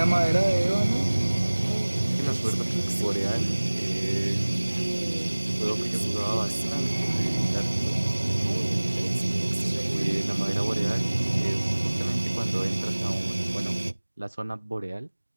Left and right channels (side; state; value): both; inverted; correlation -1.00